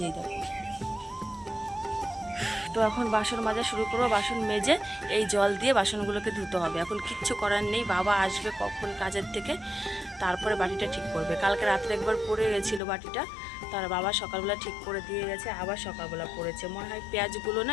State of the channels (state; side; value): drops out; right; at 12.8 s